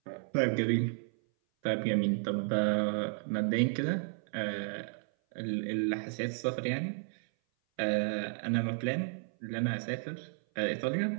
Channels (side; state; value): left; silent; 56 dB below the other